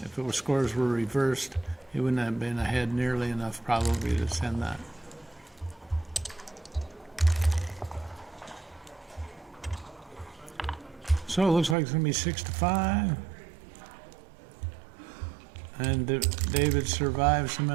If it was scores were reversed, he wouldn't have been ahead nearly enough probably to send that. So it looks like it's going to be 6-5. And David survived some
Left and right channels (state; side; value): drops out; left; at 11.8 s